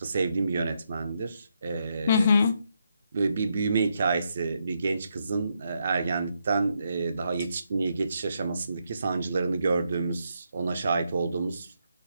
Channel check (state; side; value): inverted; both; correlation -0.79